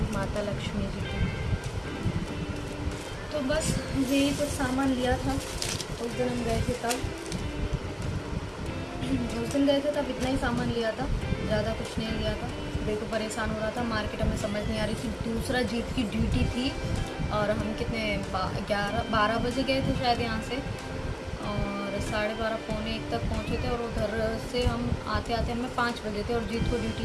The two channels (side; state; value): both; identical; correlation 1.00